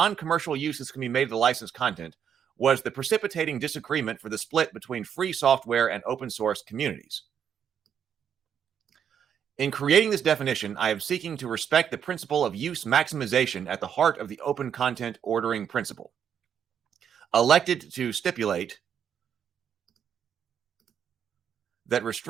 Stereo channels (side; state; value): left; quieter; 8.3 dB